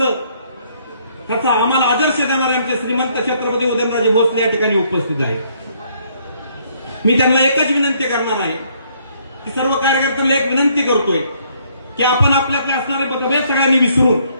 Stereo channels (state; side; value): inverted; both; correlation -0.67